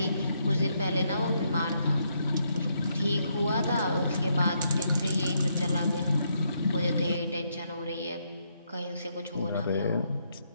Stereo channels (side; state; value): both; inverted; correlation -0.76